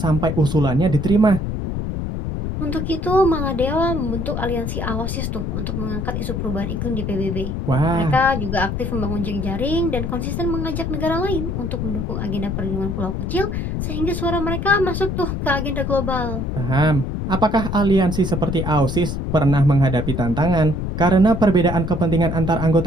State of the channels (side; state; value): left; noise; rumble, 3 dB below the sound